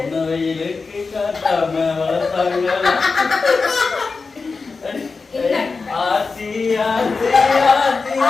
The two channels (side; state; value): right; quieter; 4.4 dB